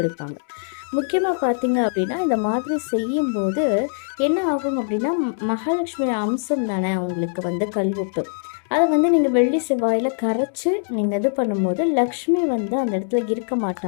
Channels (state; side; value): silent; right; 64 dB below the other